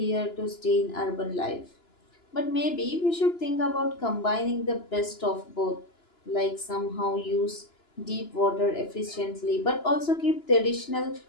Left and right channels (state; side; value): late; right; 2.9 ms